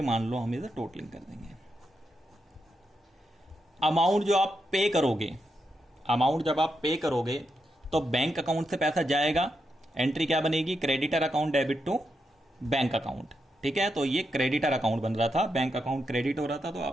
मान लो हम इसे टोटलिंग कर देंगे। अमाउंट जो आप पे करोगे अमाउंट जब आप पे करोगे तो बैंक अकाउंट से पैसा जाएगा, एंट्री क्या बनेगी, creditor account debit to bank account. ठीक है, तो ये क्रेडिटर अकाउंट बन रहा था, बैंक अकाउंट क्रेडिट हो रहा था, तो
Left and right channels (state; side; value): normal; both; correlation 0.84